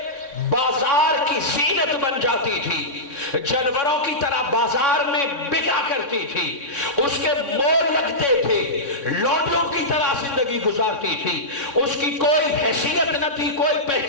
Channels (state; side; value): late; right; 3.6 ms